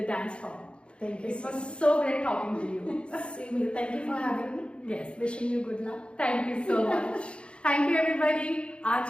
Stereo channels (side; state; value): right; late; 0.057 ms